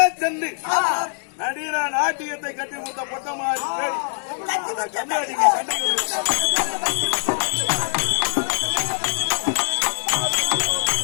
சென்று நடிகர நாட்டியத்தை கட்டி கொடுத்த பொட்டமாரி பேடி கம்மியாட்டிக்கு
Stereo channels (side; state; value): right; silent; digital silence